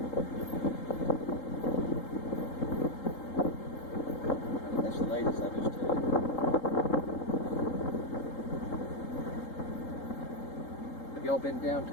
That's the ladies I just took. Have y'all been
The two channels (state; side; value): late; right; 3.8 ms